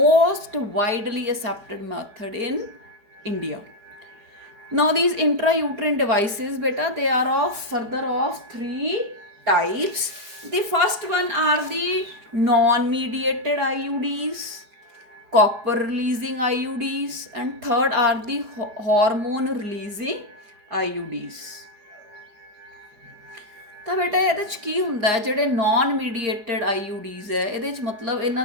widely accepted method in India. Now these intrauterine devices, beta, they are of 3 types. The first one are the non-mediated IUDs, copper releasing IUDs, and third are the hormone releasing IUDs. ਤਾਂ ਬੇਟਾ ਇਹਦੇ 'ਚ ਕੀ ਹੁੰਦਾ ਹੈ, ਜਿਹੜੇ non ਮੀਡੀਏਟਡ IUDs ਹੈ, ਇਹਦੇ 'ਚ ਮਤਲਬ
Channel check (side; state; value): left; late; 4.8 ms